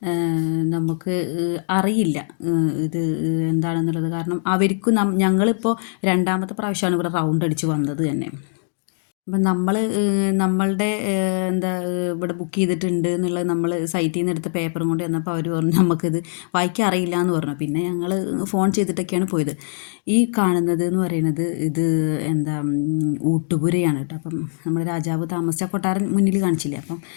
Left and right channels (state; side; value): silent; right; digital silence